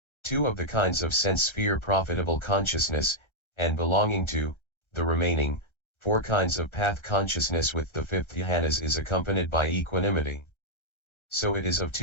two of the kinds of sense sphere profitable consciousness, and belonging to the remaining four kinds of path consciousness with the fifth jhanas is accompanied by equanimity. So it is of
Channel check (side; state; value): right; late; 1.3 ms